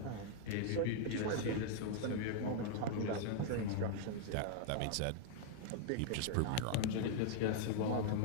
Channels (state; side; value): different; both; correlation 0.00